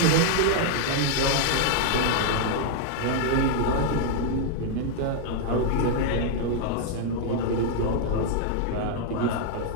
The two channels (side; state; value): both; different; correlation 0.00